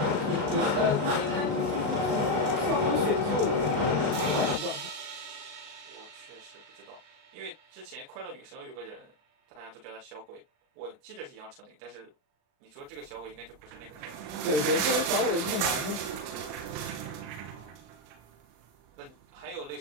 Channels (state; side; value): late; left; 38 ms